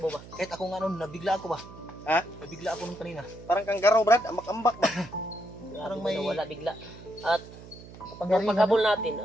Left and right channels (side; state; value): right; noise; hum, 17 dB below the sound